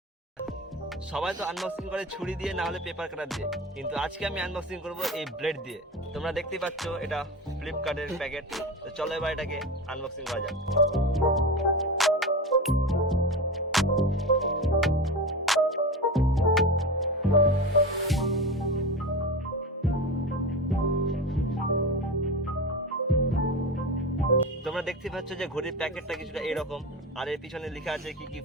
সবাই তো আনবক্সিং করে ছুরি দিয়ে, না হলে পেপার কাটার দিয়ে, কিন্তু আজকে আমি আনবক্সিং করব এই ব্লেড দিয়ে। তোমরা দেখতেই পাচ্ছ এটা ফ্লিপকার্টের প্যাকেট। তো চলো এবার এটাকে আনবক্সিং করা যাক। তোমরা দেখতে পাচ্ছ যে ঘড়ির প্যাকেটটা কিছুটা এরকম, আর এর পিছনে লেখা আছে কি কি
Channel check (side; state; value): both; normal; correlation 0.25